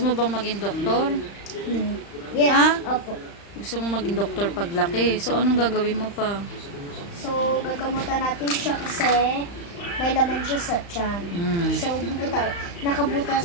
bang maging doktor? Yes, Ha? opo. Gusto mo maging doktor paglaki. So, anong gagawin mo pa? So, gagamutan natin siya kasi may laman siya sa tiyan. So,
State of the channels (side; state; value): right; late; 35 ms